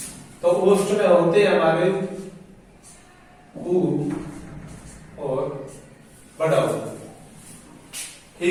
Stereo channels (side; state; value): both; identical; correlation 1.00